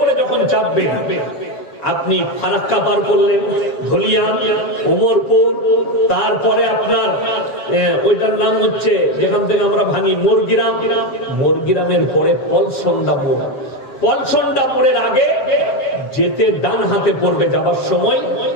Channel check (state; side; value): late; right; 7.5 ms